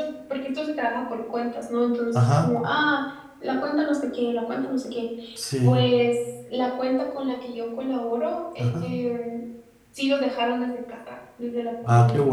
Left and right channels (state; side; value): identical; both; correlation 1.00